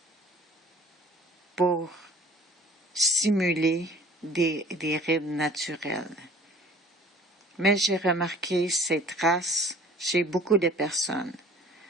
pour simuler des rides naturelles. Mais j'ai remarqué ces traces chez beaucoup de personnes.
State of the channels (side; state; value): both; normal; correlation 0.49